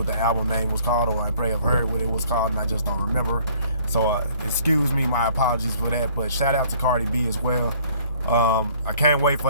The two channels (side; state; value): both; inverted; correlation -0.58